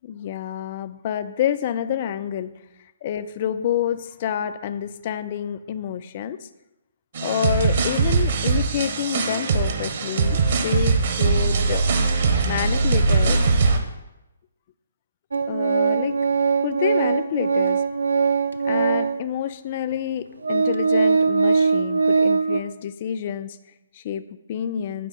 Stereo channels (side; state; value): both; inverted; correlation -0.71